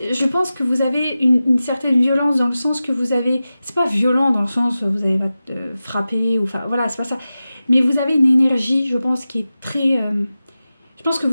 je pense que vous avez une certaine violence dans le sens que vous avez... C'est pas violent dans le sens où vous allez frapper, ou enfin voilà, c'est pas ça. Mais vous avez une énergie, je pense, qui est très... je pense que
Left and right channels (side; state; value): both; inverted; correlation -0.94